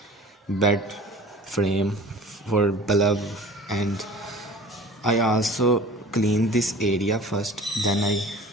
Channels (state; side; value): normal; both; correlation 0.43